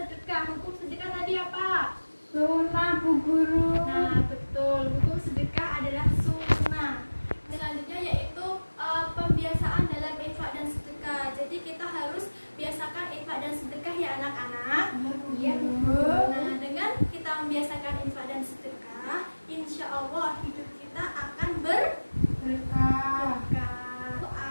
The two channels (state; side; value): inverted; both; correlation -1.00